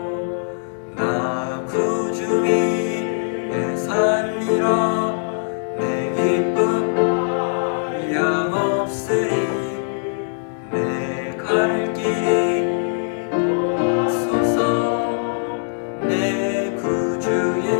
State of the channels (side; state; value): right; silent; digital silence